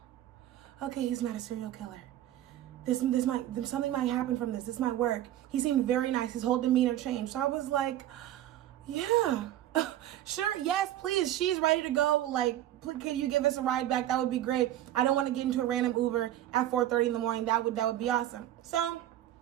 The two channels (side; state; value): left; quieter; 12.9 dB